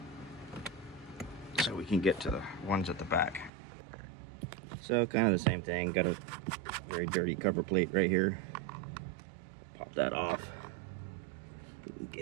so we can get to the ones at the back. So kind of the same thing. Got a very dirty cover plate right here. Pop that off.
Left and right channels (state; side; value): drops out; left; at 3.5 s